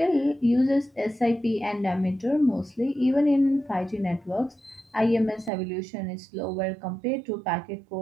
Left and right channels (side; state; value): left; drops out; at 5.5 s